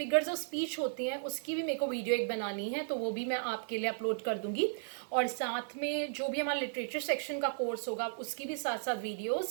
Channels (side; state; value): left; silent; 55 dB below the other